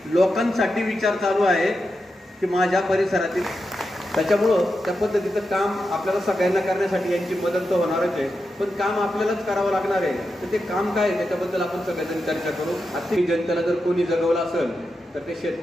लोकांसाठी विचार चालू आहे की माझ्या परिसरातील. त्याच्यामुळं त्या पद्धतीचं काम आपल्याला सगळ्यांना करण्यासाठी यांची मदत तर होणारच आहे, पण काम आपल्यालाच करावं लागणार आहे. तर ते काम काय आहे त्याच्याबद्दल आपण सगळेजण चर्चा करू. आर्थिक जनतेला जर कोणी जगवलं असेल तर ते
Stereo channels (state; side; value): normal; both; correlation 0.88